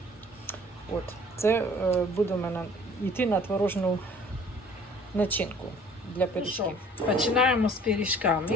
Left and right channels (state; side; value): normal; both; correlation 0.52